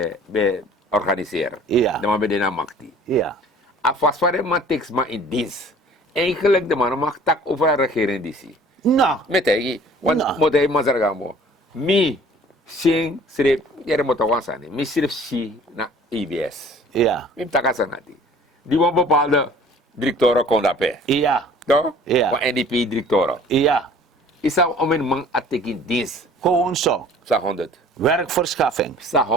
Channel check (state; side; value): normal; both; correlation 0.50